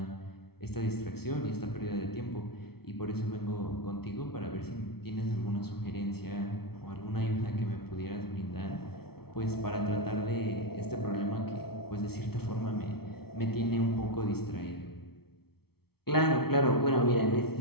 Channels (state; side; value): late; right; 0.95 ms